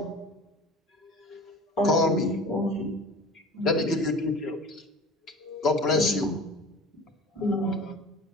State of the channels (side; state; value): both; normal; correlation 0.40